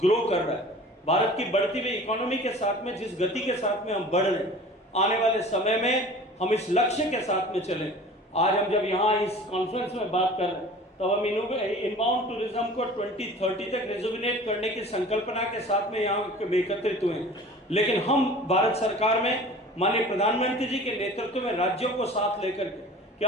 grow कर रहा है, भारत की बढ़ती हुई इकोनॉमी के साथ में जिस गति के साथ में हम बढ़ रहे हैं, आने वाले समय में हम इस लक्ष्य के साथ में चलें। आज हम जब यहाँ इस कॉन्फ्रेंस में बात कर रहे हैं तो हम इनबाउंड टूरिज्म को 2030 तक रिजुविनेट करने की संकल्पना के साथ में यहाँ एकत्रित हुए हैं। लेकिन हम भारत सरकार में माननीय प्रधानमंत्री जी के नेतृत्व में राज्यों को साथ लेकर के कि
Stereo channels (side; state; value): both; normal; correlation 0.42